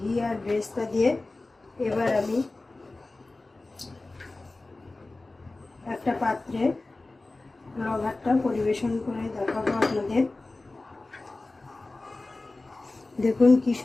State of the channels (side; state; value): right; quieter; 3.2 dB